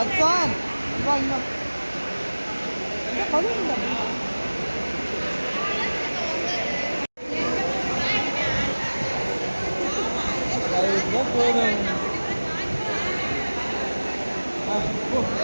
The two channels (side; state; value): both; inverted; correlation -1.00